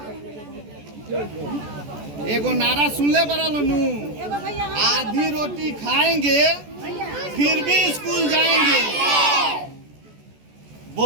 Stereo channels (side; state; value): left; late; 14 ms